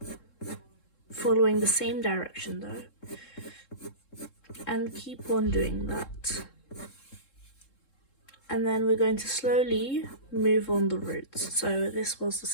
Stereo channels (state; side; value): late; right; 3.7 ms